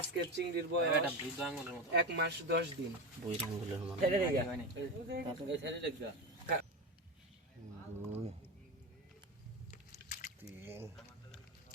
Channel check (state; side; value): normal; both; correlation 0.20